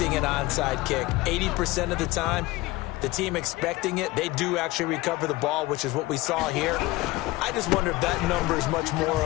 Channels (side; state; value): right; quieter; 19.7 dB